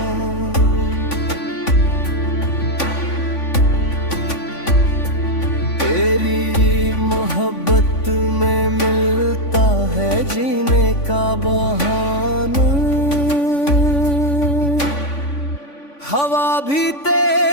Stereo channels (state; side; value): late; right; 3.5 ms